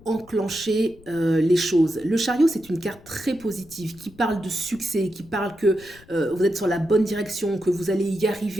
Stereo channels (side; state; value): left; noise; rumble, 24 dB below the sound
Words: enclencher les choses. Le chariot, c'est une carte très positive qui parle de succès, qui parle que vous êtes sur la bonne direction, que vous allez y